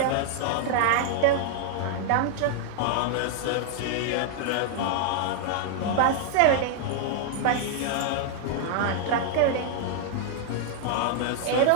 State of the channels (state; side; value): different; both; correlation -0.01